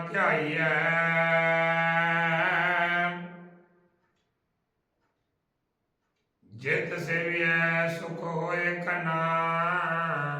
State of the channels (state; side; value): identical; both; correlation 1.00